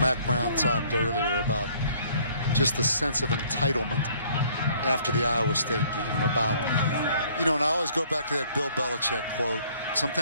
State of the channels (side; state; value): both; inverted; correlation -0.60